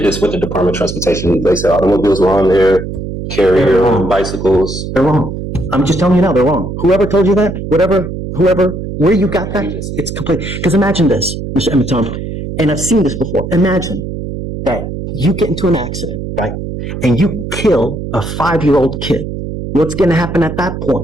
this with the Department of Transportation. They said automobiles were on there, carrier, bicycles. They're wrong. I'm just telling you now, they're wrong. Whoever told you that, whoever, where you got that, it's complete. Because imagine this, Mr. Emiton, and I've seen this before. Imagine that you get into an accident, right? And you kill a 5-year-old kid. What's going to happen at that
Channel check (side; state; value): right; noise; hum, 7 dB below the sound